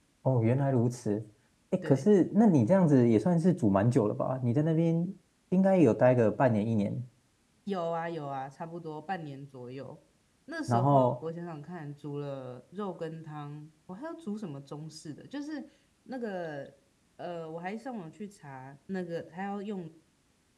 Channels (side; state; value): both; identical; correlation 1.00